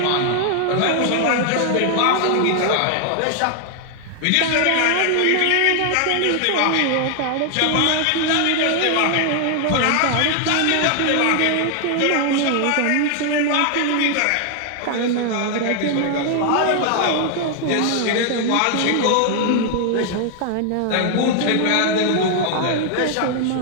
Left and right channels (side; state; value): both; different; correlation 0.00